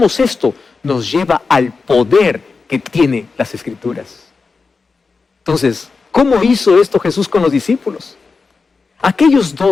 esto nos lleva al poder que tiene las Escrituras. Entonces, ¿cómo hizo esto Jesús con los discípulos? Aquellos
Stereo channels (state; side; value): quieter; right; 4.5 dB